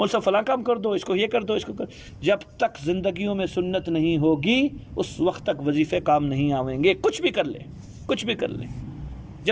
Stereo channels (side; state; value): both; identical; correlation 1.00